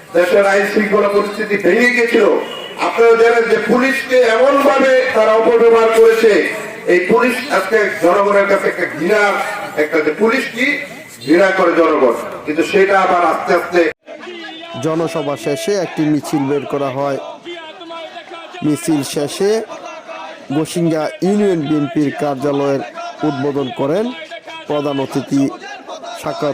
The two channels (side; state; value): both; identical; correlation 1.00